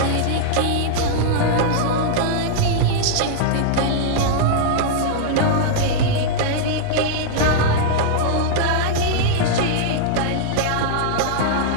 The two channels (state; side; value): different; both; correlation -0.01